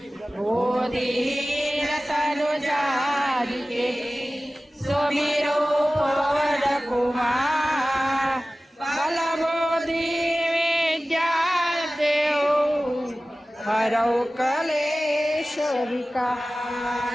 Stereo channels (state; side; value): normal; both; correlation 0.97